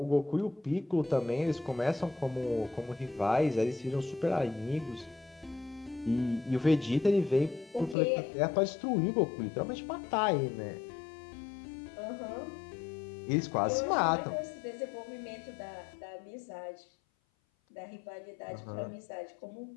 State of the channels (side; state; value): right; drops out; at 8.0 s